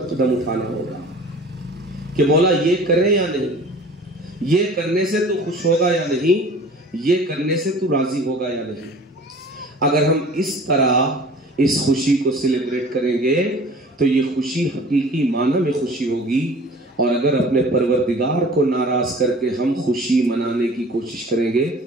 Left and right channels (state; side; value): normal; both; correlation 0.45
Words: قدم اٹھانا ہوگا کہ مولا یہ کریں یا نہیں، یہ کرنے سے تو خوش ہوگا یا نہیں، یہ کرنے سے تو راضی ہوگا یا نہیں۔ اگر ہم اس طرح اس خوشی کو سیلیبریٹ کریں گے تو یہ خوشی حقیقی معنی میں خوشی ہوگی، اور اگر اپنے پروردگار کو ناراض کر کے ہم خوشی منانے کی کوشش کریں گے